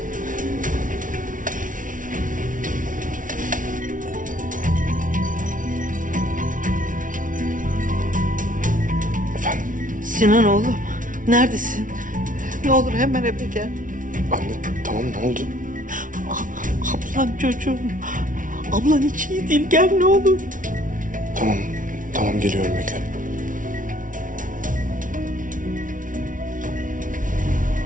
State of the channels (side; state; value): left; late; 0.38 ms